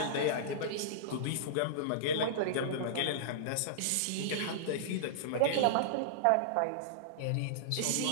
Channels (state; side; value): different; both; correlation -0.02